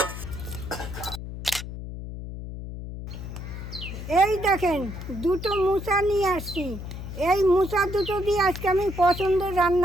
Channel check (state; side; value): noise; left; hum, 9 dB below the sound